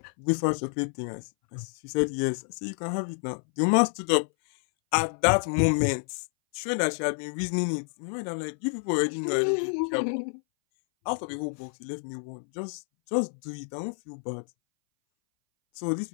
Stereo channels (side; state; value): right; silent; 59 dB below the other